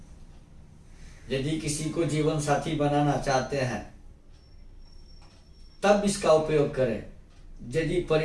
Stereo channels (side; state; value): both; identical; correlation 1.00